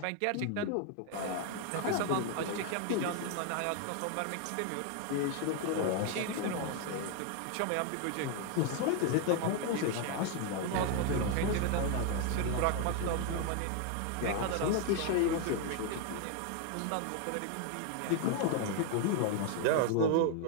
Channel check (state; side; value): different; both; correlation 0.01